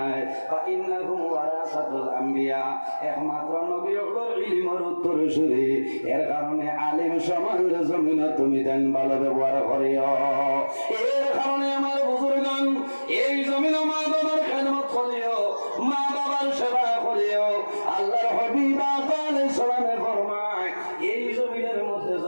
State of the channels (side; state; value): both; inverted; correlation -1.00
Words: ফা ইন্নাহুম ওয়ারাসাতুল আম্বিয়া একমাত্র নবী হলোর ইলমের উত্তরসূরি এর কারণে আলিম সমাজের জমিনে তুমি দেন ভালো ব্যবহার করিও এর কারণে আমার বুজুর্গণ এই জমিনে মা বাবার খেদমত করিও মা বাবার সেবা করিও আল্লাহর হাবিব আলাইহিস সালামে ফরমায় এই জমিনের মধ্যে